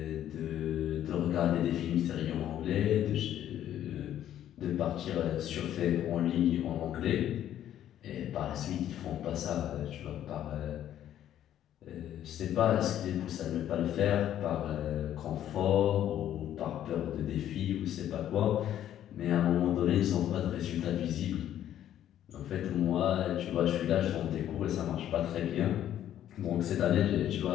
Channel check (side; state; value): right; quieter; 11.3 dB